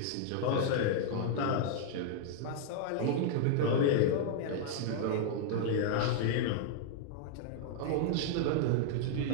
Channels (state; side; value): different; both; correlation -0.01